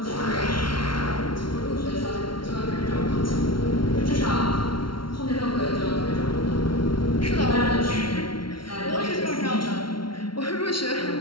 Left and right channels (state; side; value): late; right; 0.74 ms